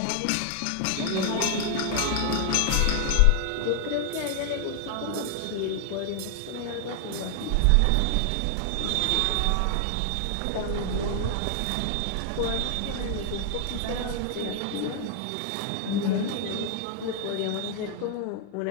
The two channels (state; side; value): different; both; correlation 0.00